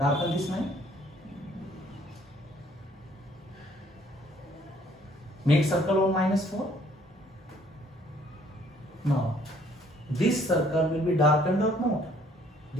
this line. Make circle on minus 4. Now, this circle will be darkened or not?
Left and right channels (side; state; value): both; normal; correlation 0.61